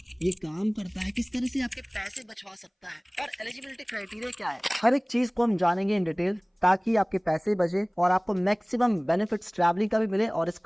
ये काम करता है, किस तरह से आपके पैसे बचवा सकता है और एलिजिबिलिटी क्राइटेरिया क्या है, हर एक चीज को हम जानेंगे इन डिटेल, ताकि आपके पैसे बचे और आपको मैक्सिमम बेनिफिट्स ट्रैवलिंग का भी मिले और इस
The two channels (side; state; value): both; identical; correlation 1.00